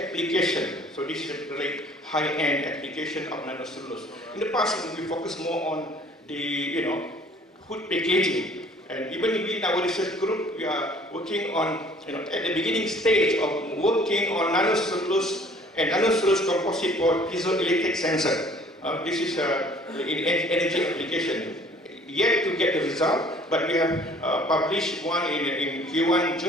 So this is a very high-end application of nanocellulose. In the past, we focused more on the food packaging. And even in our research group, we are working on, at the beginning stage of working on nanocellulose and nanocellulose composite for piezoelectric sensor. This is in energy application. Yet to get the result, but we have published one in Q1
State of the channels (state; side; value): normal; both; correlation 0.54